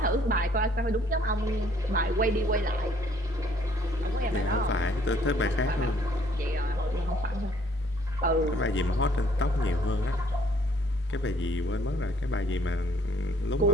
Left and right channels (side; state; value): both; normal; correlation 0.62